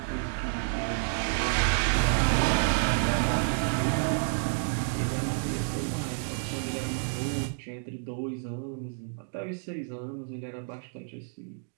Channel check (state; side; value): silent; left; digital silence